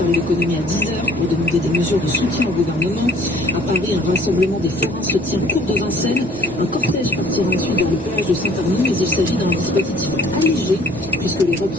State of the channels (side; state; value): both; normal; correlation 0.55